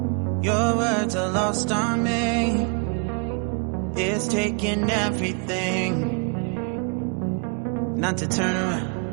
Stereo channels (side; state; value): left; quieter; 36.6 dB